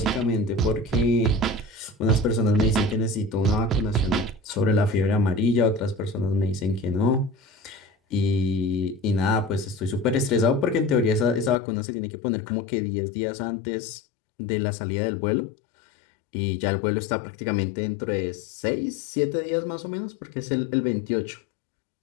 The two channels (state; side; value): drops out; right; at 11.6 s